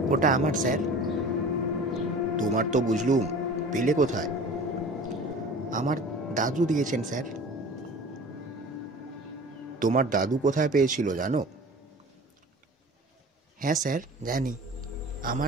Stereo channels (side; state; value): both; normal; correlation 0.41